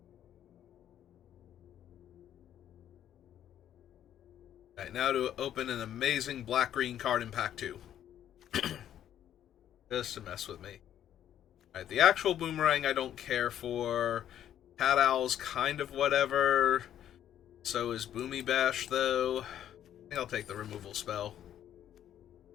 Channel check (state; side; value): quieter; right; 10.7 dB